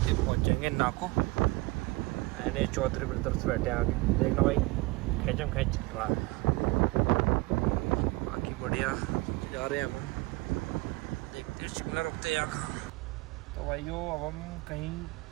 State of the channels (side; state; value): left; quieter; 23.5 dB